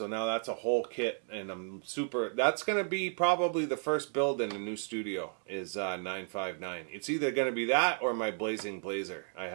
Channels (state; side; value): silent; left; 56 dB below the other